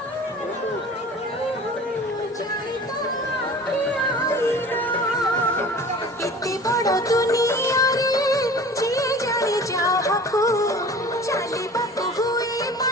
इतनी बड़ा दुनिया रे जे जाने जाहको चाली बापू हुए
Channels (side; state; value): both; normal; correlation 0.42